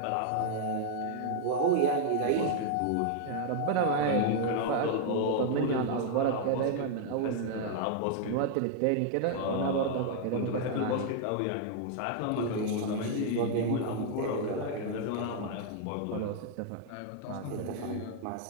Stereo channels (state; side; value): different; both; correlation 0.00